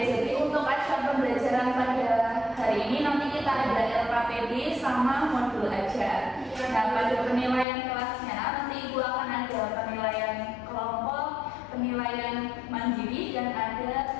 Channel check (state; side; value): drops out; right; at 7.7 s